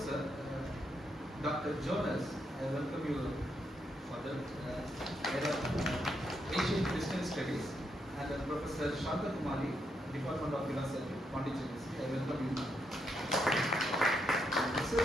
Dr. Jonas, I welcome you for the Asian Christian Studies, and Professor Kumar, Department of Philosophy, Pondicherry, I welcome you.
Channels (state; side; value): normal; both; correlation 0.79